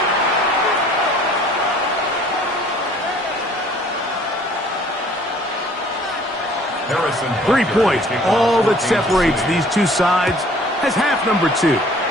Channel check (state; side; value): normal; both; correlation 0.54